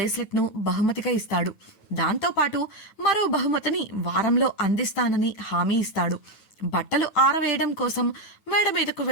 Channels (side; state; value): right; late; 9.2 ms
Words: ను బహుమతిగా ఇస్తాడు. దాంతో పాటు మరో బహుమతిని వారంలో అందిస్తానని హామీ ఇస్తాడు. బట్టలు ఆరవేయడం కోసం మేడ మీదకు